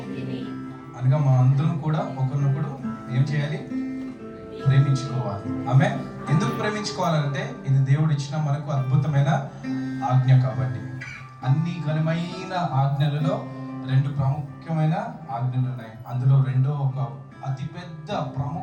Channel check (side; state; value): both; identical; correlation 1.00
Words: అనగా మా అందరం కూడా ఒకరినొకడు ఏం చేయాలి? ప్రేమించుకోవాలి. ఆమె ఎందుకు ప్రేమించుకోవాలంటే ఇది దేవుడు ఇచ్చిన మనకు అద్భుతమైన ఆజ్ఞ కాబట్టి. అన్ని ఘనమైన ఆజ్ఞలలో 2 ప్రాముఖ్యమైన ఆజ్ఞలు ఉన్నాయి. అందులో రెండో ఒక అతిపెద్ద